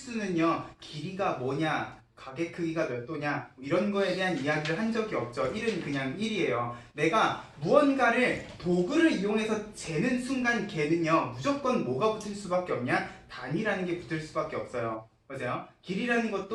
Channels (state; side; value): identical; both; correlation 1.00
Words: 길이가 뭐냐, 각의 크기가 몇 도냐, 이런 거에 대한 이야기를 한 적이 없죠. 1은 그냥 1이에요. 내가 무언가를 도구를 이용해서 재는 순간 걔는요, 무조건 뭐가 붙을 수밖에 없냐? 단위라는 게 붙을 수밖에 없어요. 맞아요? 길이라는